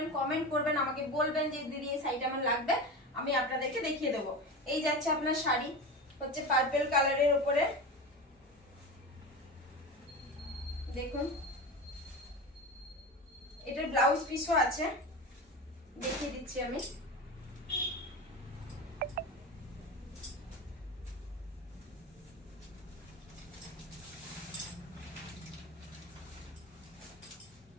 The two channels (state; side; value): normal; both; correlation 0.26